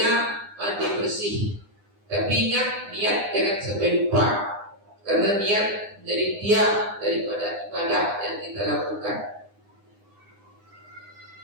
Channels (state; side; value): late; left; 9.8 ms